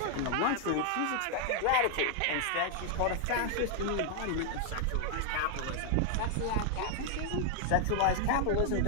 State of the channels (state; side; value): different; both; correlation 0.00